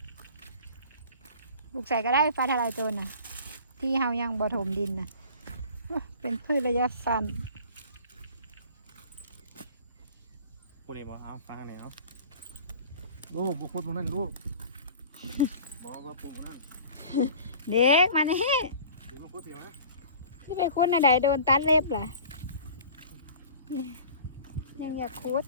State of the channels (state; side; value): inverted; both; correlation -0.43